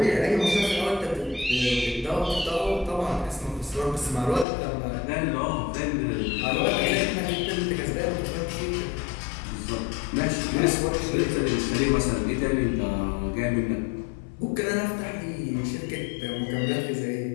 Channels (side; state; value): right; drops out; at 4.5 s